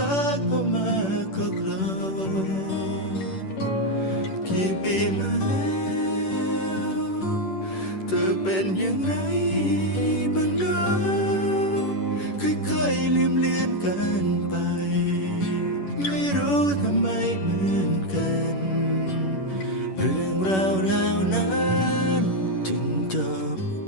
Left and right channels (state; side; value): late; right; 11 ms